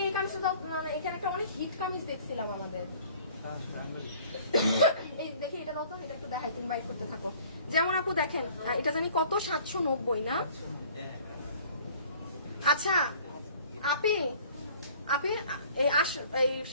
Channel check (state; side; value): inverted; both; correlation -0.52